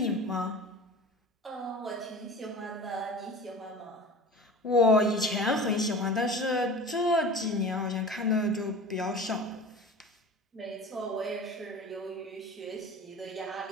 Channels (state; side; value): normal; both; correlation 0.37